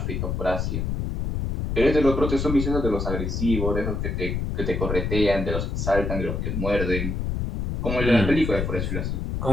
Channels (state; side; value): noise; left; rumble, 2 dB below the sound